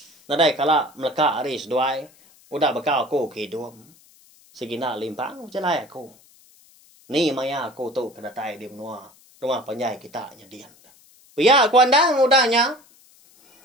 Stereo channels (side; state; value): left; noise; hiss, 28 dB below the sound